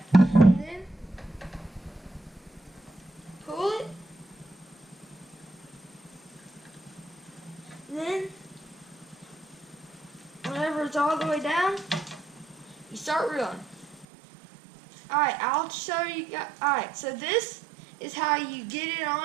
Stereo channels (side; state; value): left; drops out; at 14.1 s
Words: and then pull it. Then, whenever it's all the way down, you start reeling. Alright, I'll show you guys. Alright, so this is how you get it